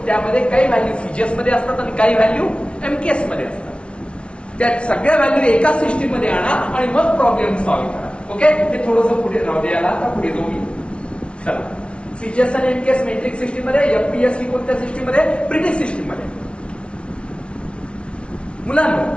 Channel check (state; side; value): late; right; 0.059 ms